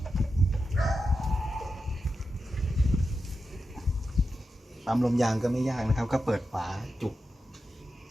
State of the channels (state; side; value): normal; both; correlation 0.90